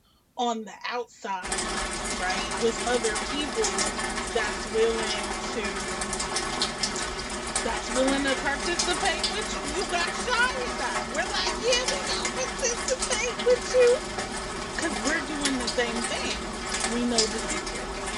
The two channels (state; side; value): identical; both; correlation 1.00